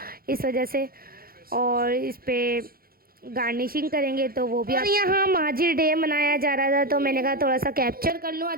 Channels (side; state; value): left; late; 0.43 ms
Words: इस वजह से। और इस पे गार्निशिंग करेंगे तो वो भी। और यहाँ माजिर डे मनाया जा रहा था, तो मैंने कहा थोड़ा सा कैप्चर कर लूँ,